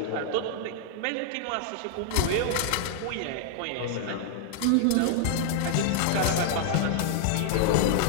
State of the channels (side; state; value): both; different; correlation -0.01